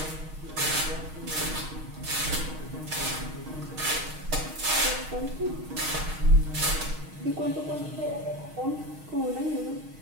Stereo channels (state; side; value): late; left; 6.4 ms